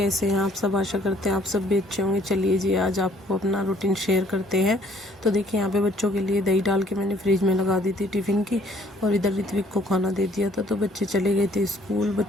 हैं आप सब। आशा करते हैं आप सब भी अच्छे होंगे। चलिए जी, आज आपको अपना रूटीन शेयर करते हैं। तो देखिए, यहाँ पे बच्चों के लिए दही डाल के मैंने फ्रिज में लगा दी थी टिफ़िन की, और इधर ऋत्विक को खाना दे दिया था। तो बच्चे चले गए थे स्कूल।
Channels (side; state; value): both; normal; correlation 0.61